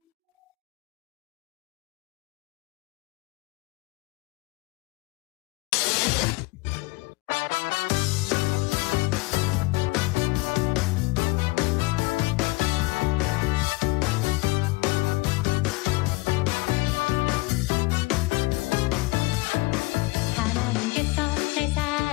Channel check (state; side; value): quieter; right; 23.6 dB